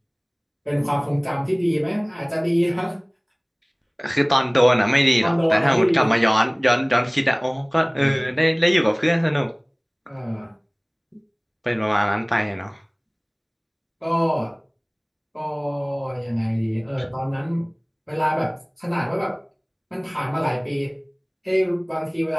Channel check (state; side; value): identical; both; correlation 1.00